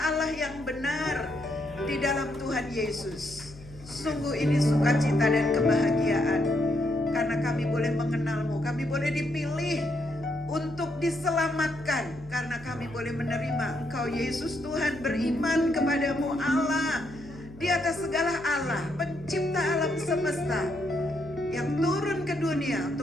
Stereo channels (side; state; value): left; noise; hum, 19 dB below the sound